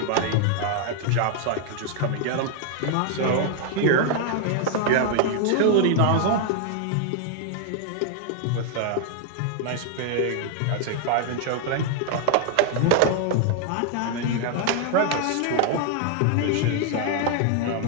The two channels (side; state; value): both; different; correlation 0.00